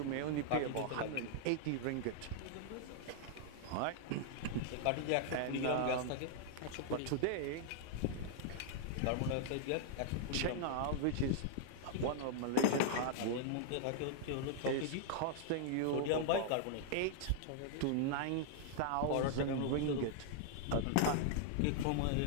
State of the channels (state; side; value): different; both; correlation -0.01